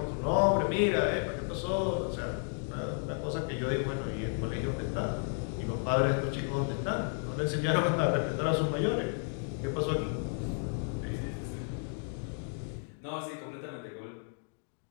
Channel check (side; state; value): right; silent; 56 dB below the other